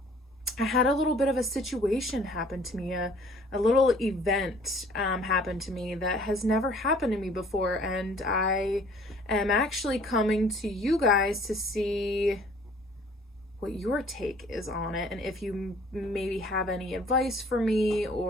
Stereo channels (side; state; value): both; normal; correlation 0.55